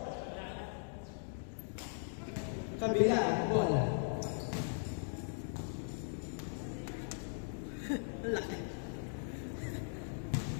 Kabila ang bola. Laki.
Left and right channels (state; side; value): silent; right; digital silence